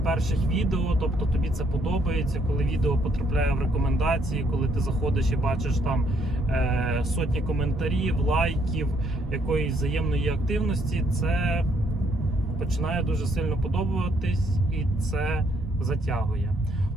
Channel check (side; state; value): both; normal; correlation 0.69